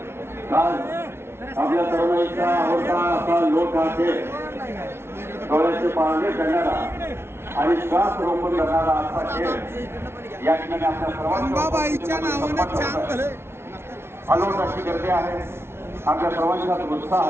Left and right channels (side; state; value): left; late; 0.12 ms